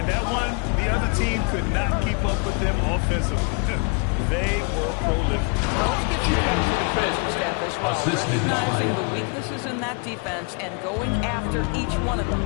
that one, the other team could not keep up with them offensively. They were prolific. Let's give some credit to the coaching staff as well, recognizing the weaknesses in that defense and going after each one of them.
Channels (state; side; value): quieter; right; 34.3 dB